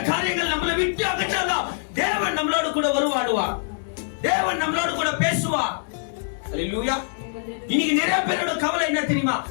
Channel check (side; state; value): right; silent; digital silence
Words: காரியங்கள் நம்மளை விட்டு அகற்றாதான் தேவன் நம்மளோடு கூட வருவாடுவார். தேவன் நம்மளோடு கூட பேசுவார். ஹல்லேலூயா. இன்னைக்கு நிறைய பேரோட கவலை என்ன தெரியுமா?